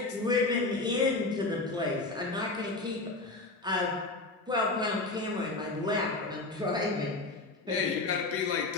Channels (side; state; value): right; quieter; 3.2 dB